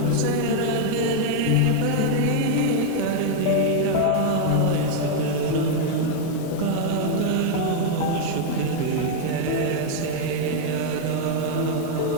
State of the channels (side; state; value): both; different; correlation 0.00